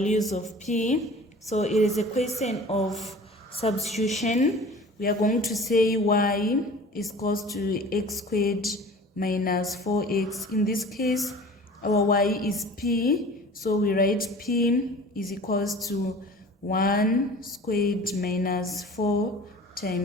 of p. So it is a question of substitution. We are going to say y is equals to x squared minus 4x. In this case, our y is p, so we write p is equals to 1 squared minus 4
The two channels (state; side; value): normal; both; correlation 0.42